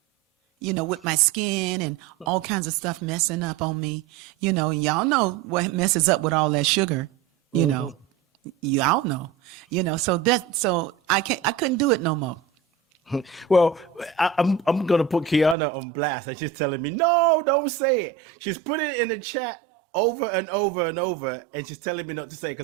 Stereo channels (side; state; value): left; drops out; at 15.6 s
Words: with my skin and all kinds of stuff messing up on me, and y'all know what messes up with all that sugar, y'all know, so I couldn't do it no more. Well, I'm gonna put Kiana on blast, and she's telling me, no, don't say it. She's put it in the chat over and over and over, and she's telling me not to say it